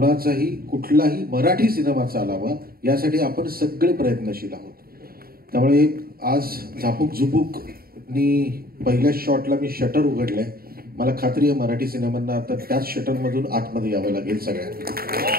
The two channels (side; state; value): left; late; 0.43 ms